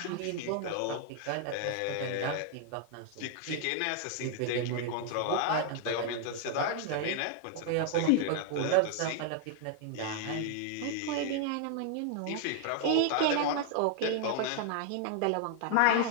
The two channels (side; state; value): both; different; correlation 0.00